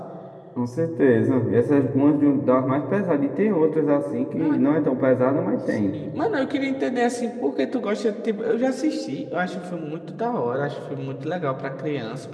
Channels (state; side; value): identical; both; correlation 1.00